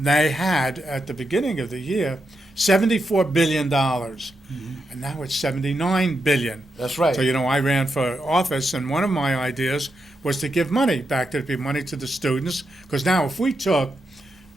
They had, at the beginning of the year, $74 billion, and now it's $79 billion. That's right. So, I ran for office, and one of my ideas was to give money back to the money to the students, because now if we took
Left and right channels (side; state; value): both; normal; correlation 0.85